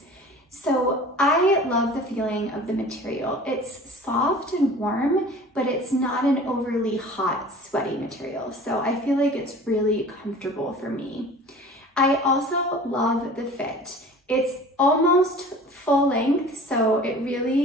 So I love the feeling of the material. It's soft and warm, but it's not an overly hot, sweaty material. So I feel like it's really comfortable for me. I also love the fit. It's almost full length, so it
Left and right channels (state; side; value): normal; both; correlation 0.43